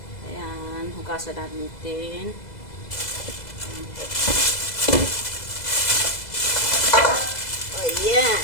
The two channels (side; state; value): right; late; 2.0 ms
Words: Ayan, hugasan natin. Ayan.